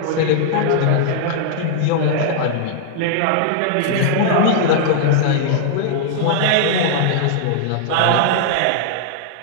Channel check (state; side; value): different; both; correlation -0.01